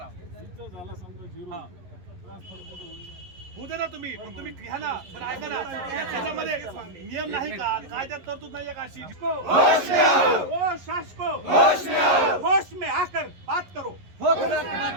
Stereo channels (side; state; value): left; late; 11 ms